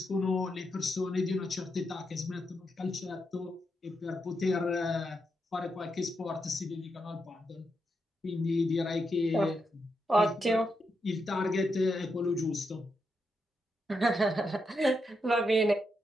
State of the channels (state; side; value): normal; both; correlation 0.83